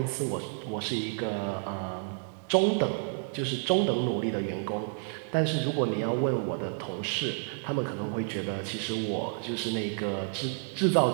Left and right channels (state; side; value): silent; left; 58 dB below the other